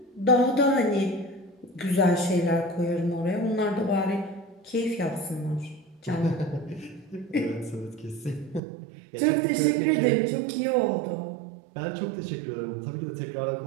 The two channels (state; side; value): drops out; left; at 8.6 s